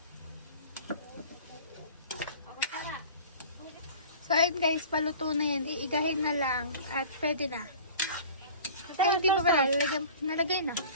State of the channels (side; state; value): both; inverted; correlation -0.42